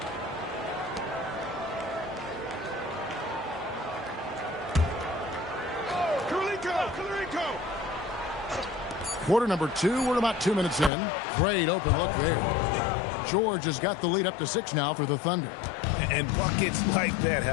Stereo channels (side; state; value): right; drops out; at 10.9 s